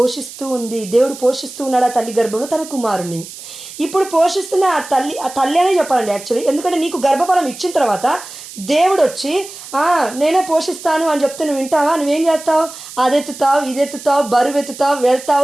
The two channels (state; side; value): noise; right; hiss, 14 dB below the sound